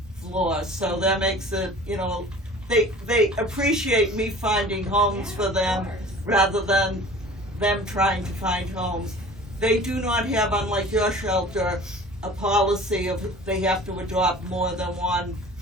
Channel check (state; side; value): normal; both; correlation 0.44